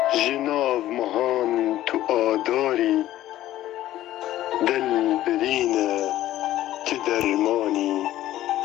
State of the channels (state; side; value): quieter; right; 14.0 dB